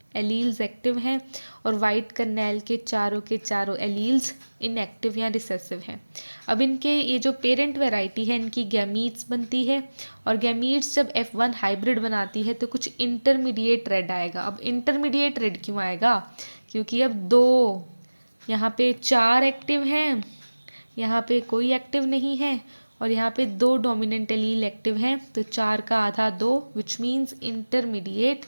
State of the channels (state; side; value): inverted; both; correlation -1.00